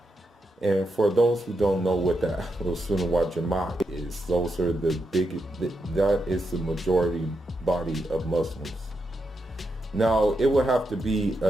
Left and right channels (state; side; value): normal; both; correlation 0.84